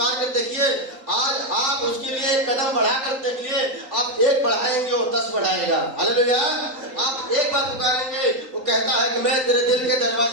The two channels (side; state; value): left; late; 3.8 ms